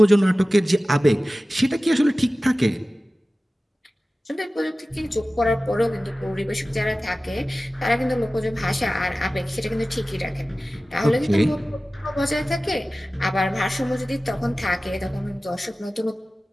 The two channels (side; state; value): both; normal; correlation 0.96